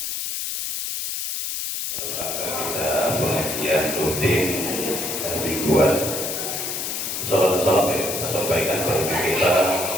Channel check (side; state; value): left; noise; hiss, 2 dB below the sound